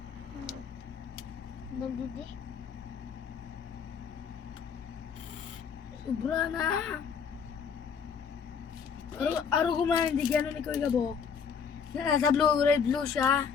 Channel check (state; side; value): quieter; right; 6.6 dB